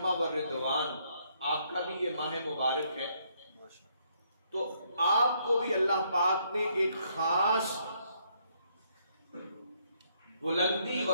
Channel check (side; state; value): both; inverted; correlation -0.72